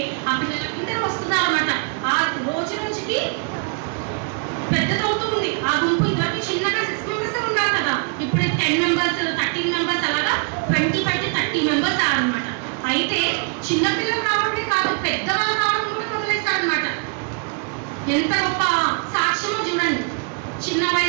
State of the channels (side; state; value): left; quieter; 37.0 dB